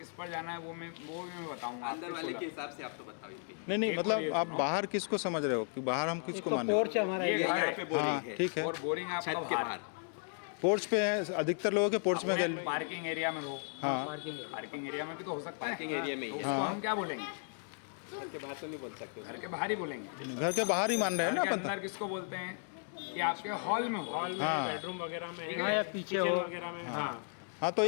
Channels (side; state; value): right; silent; 54 dB below the other